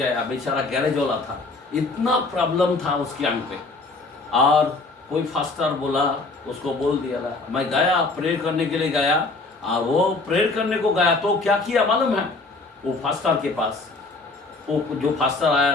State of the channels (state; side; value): quieter; right; 3.5 dB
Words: बेचारा गैरेज वाला था, इतना प्रॉब्लम था उसकी आंख पे, और कोई फास्टर बोला, उसको बोल दिया था। मैं गया प्रेयर करने के लिए गया, और वो प्रेयर करने को गया तो क्या किया मालूम है, वो फास्टर के पास, वो जो फास्टर आया